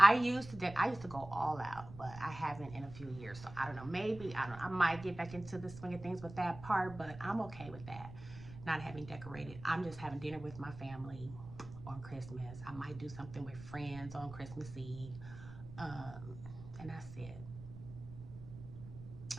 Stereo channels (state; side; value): noise; right; rumble, 14 dB below the sound